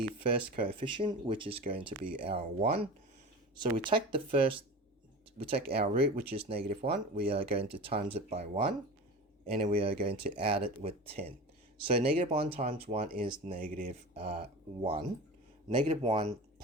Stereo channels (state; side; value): normal; both; correlation 0.32